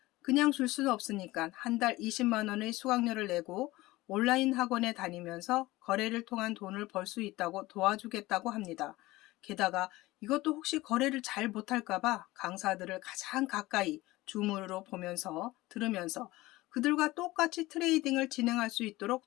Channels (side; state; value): right; quieter; 19.1 dB